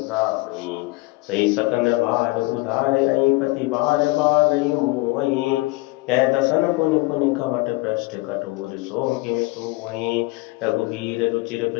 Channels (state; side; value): quieter; right; 22.6 dB